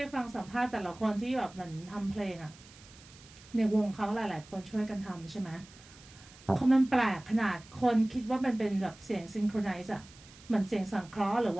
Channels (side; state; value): right; noise; hiss, 22 dB below the sound